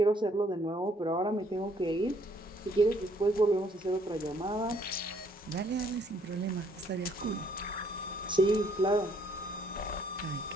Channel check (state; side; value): normal; both; correlation 0.65